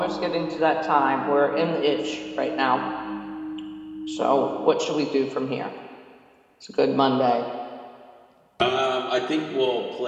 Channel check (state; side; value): identical; both; correlation 1.00